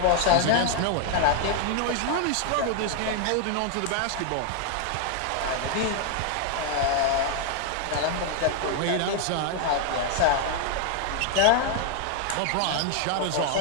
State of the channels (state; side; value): different; both; correlation 0.00